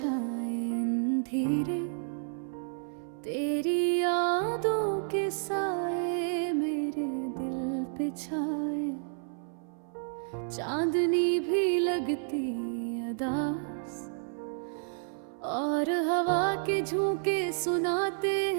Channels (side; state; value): left; silent; 56 dB below the other